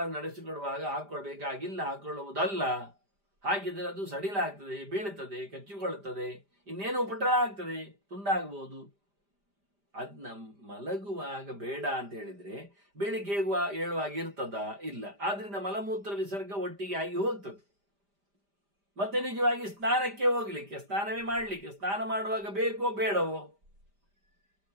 ನಡೆಸಿಕೊಡುವಾಗ ಹಾಕೊಳ್ಬೇಕಾಗಿಲ್ಲ, ಹಾಕೊಳ್ಳುವುದಲ್ಲ. ಹಾಗಿದ್ರೆ ಅದು ಸಡಿಲಾಗ್ತದೆ, ಬೀಳುತ್ತದೆ, ಕಚ್ಚಿಕೊಳ್ಳುತ್ತದೆ, ಇನ್ನೇನು ಉಪಟಳ ಆಗ್ತದೆ, ತುಂಡಾಗಬಹುದು. ಅದನ್ನ ಮಲಗುವಾಗ ಬೇಡ ಅಂತ ಹೇಳಿದ್ರೆ ಬೆಳಿಗ್ಗೆ ಏಳುವಾಗ ಇರ್ತದ? ಇಲ್ಲ. ಆದ್ರಿಂದ ಮಲಮೂತ್ರ ವಿಸರ್ಗ ಒಟ್ಟಿಗೆ ಆಗಿ ಹೋಗ್ತದೆ. ಮತ್ತೆ ನಿಜವಾಗಿ ಸ್ನಾನಕ್ಕೆ ಹೋಗ್ಲಿಕ್ಕೆ, ಸ್ನಾನವೇ ಮಾಡಲಿಕ್ಕೆ, ಸ್ನಾನ ಮಾಡುವಾಗ ಬೇಕೋ ಬೇಡವೋ,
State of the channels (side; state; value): left; late; 5.0 ms